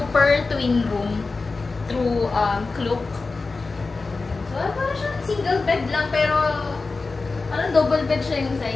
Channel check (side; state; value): right; quieter; 3.9 dB